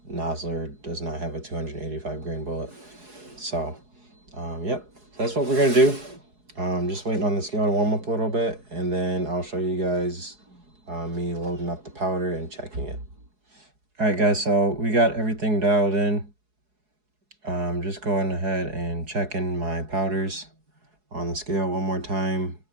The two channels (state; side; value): late; left; 4.7 ms